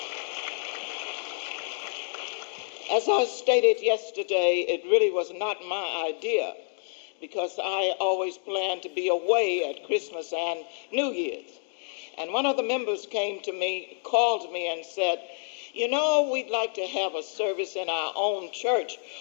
As I stated yesterday, it really was not my idea because I always planned to be away at Christmas and New Year's. And one of the members came to me, called me and said, we'd like to have a service in our own church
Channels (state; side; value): silent; right; digital silence